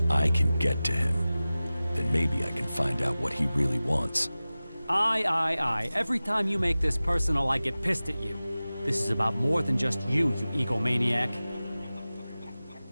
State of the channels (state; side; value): inverted; both; correlation -0.97